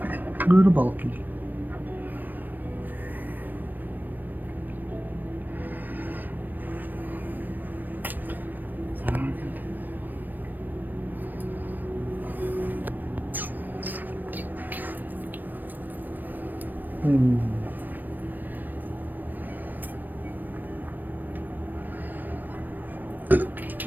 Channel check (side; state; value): left; late; 0.090 ms